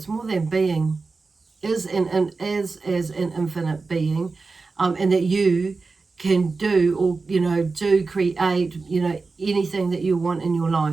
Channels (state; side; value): quieter; left; 4.1 dB